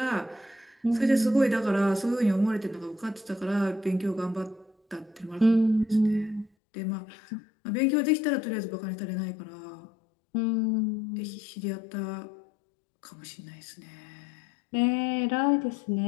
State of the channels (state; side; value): drops out; right; at 6.5 s